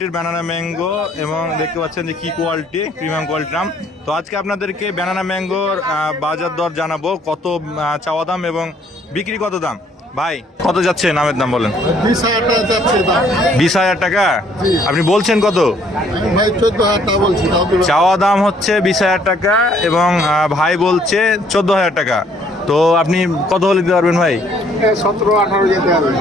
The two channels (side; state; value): both; normal; correlation 0.63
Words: ব্যানানা ম্যাঙ্গো, এবং দেখতে পাচ্ছেন যে কি কোয়ালিটি, প্রিমিয়াম কোয়ালিটির আম। তো আজকে আপনাদেরকে ব্যানানা ম্যাঙ্গোর বাজার দর জানাবো, কত চাওয়া দাম এবং বিক্রি কত দাম। ভাই কত যাচ্ছে নামের দাম বলেন? 20,000 টাকা যাচ্ছে দাম। 20,000 টাকা? আপনি বলছেন কত? আমি ভাই 14,000 টাকা বলছি। চাওয়া দাম হচ্ছে 20,000 টাকা এবং ভাই বলছে 14,000 টাকা। তো আপনি কত হলে দিতে পারবেন ভাই? 17-18 যেতে হবে।